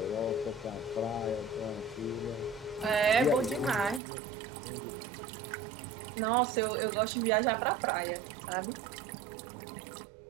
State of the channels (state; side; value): drops out; left; at 4.0 s